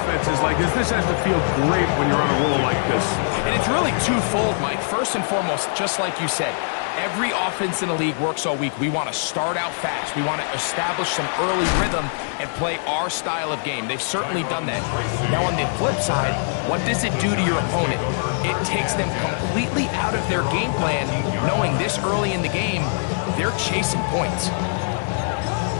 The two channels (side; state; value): right; silent; digital silence